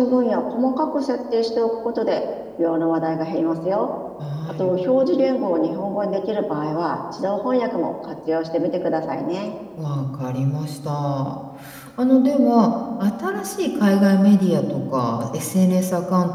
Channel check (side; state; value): both; identical; correlation 1.00